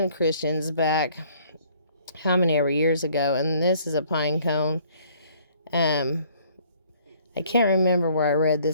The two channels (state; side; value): inverted; both; correlation -0.59